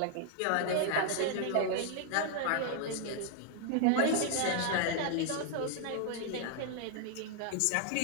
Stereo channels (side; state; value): both; different; correlation 0.00